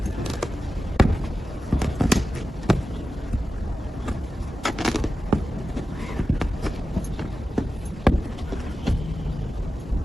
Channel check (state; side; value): normal; both; correlation 0.93